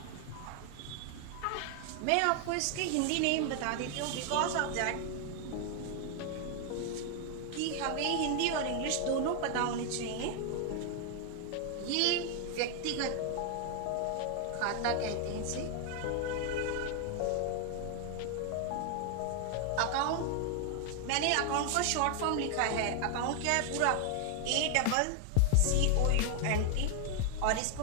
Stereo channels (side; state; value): both; different; correlation 0.00